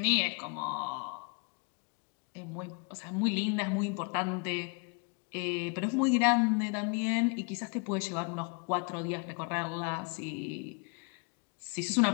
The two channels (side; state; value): right; quieter; 34.7 dB